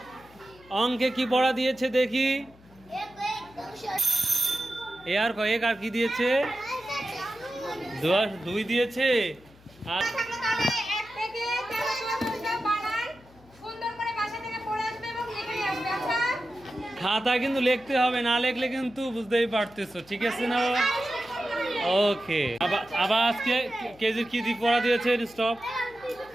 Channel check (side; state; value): left; noise; hum, 25 dB below the sound